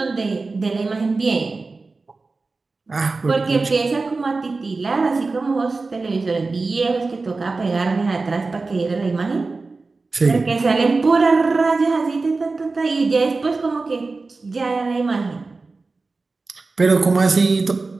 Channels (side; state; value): left; quieter; 3.8 dB